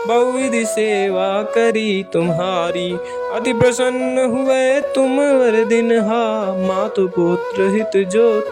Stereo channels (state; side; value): identical; both; correlation 1.00